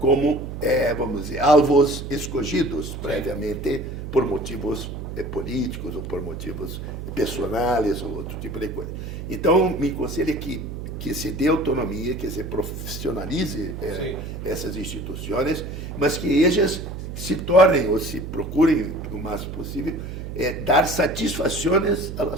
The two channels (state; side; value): noise; right; hum, 8 dB below the sound